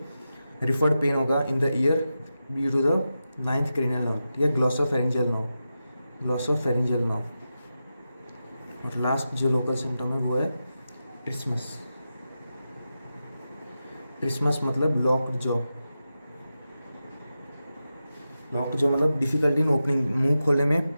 रिफर्ड पेन होगा in the ear due to the 9th cranial nerve, ठीक है, ग्लॉसोफेरिंजियल नर्व। और लास्ट जो लोकल सिम्टम है वो है ट्रिस्मस मतलब लॉक्ड जॉ मतलब डिफिकल्टी इन ओपनिंग, मुंह खोलने में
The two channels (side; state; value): both; inverted; correlation -0.90